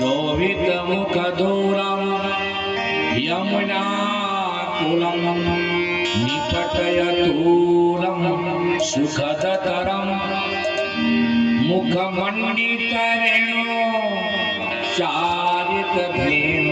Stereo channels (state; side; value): identical; both; correlation 1.00